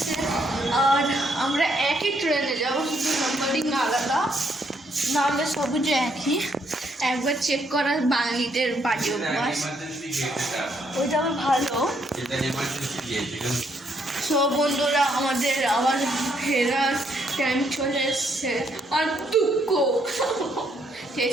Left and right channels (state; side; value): normal; both; correlation 0.72